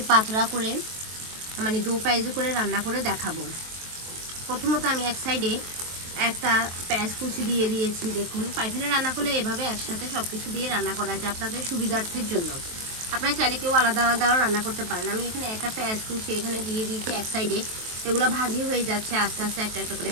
পাতলা করে মানে দো পেঁয়াজু করে রান্না করে দেখাবো। প্রথমত আমি এক সাইডে একটা পেঁয়াজ কুচি দিয়ে দিয়েছি। দেখুন, পাইফেলে রান্না করলে এভাবে একসাথে সব কিছু দিয়ে রান্না করা যায় আপনাদের সুবিধার্থের জন্য। আপনারা চাইলে কেউ আলাদা আলাদাও রান্না করতে পারেন। আমি এখানে একটা পেঁয়াজ কুচি এখানে দিয়ে দিয়েছি এক সাইডে। এগুলো ভাজি হয়ে যাচ্ছে আস্তে আস্তে একটা একটা করে।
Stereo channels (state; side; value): late; left; 23 ms